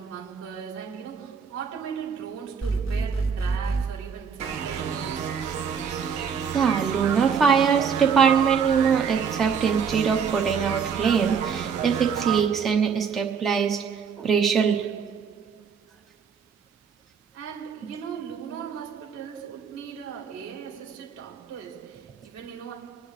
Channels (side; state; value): left; quieter; 6.5 dB